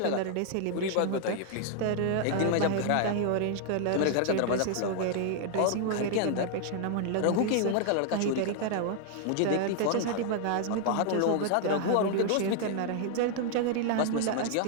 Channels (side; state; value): both; different; correlation 0.00